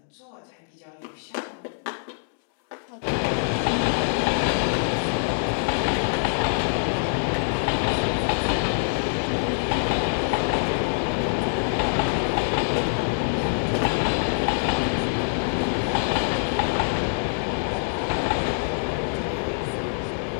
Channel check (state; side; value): silent; right; digital silence